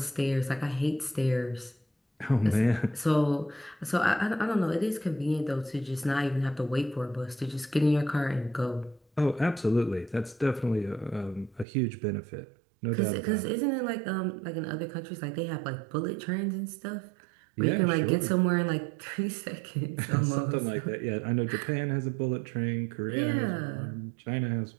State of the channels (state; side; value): drops out; left; at 11.7 s